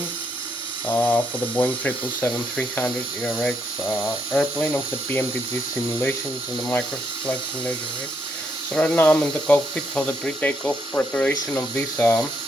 for the Boeing 777-300 ERX airplane of the PMDG simulations and the Microsoft Flight Simulator. Right? So right now I'm in the cockpit for the pre-takeoff preparation of this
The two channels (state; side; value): normal; both; correlation 0.76